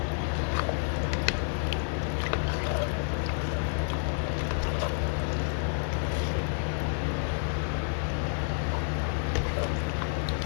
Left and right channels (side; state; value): right; silent; 58 dB below the other